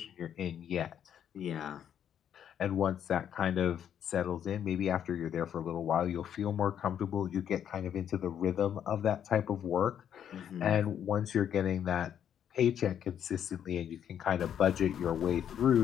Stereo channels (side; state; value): right; quieter; 9.3 dB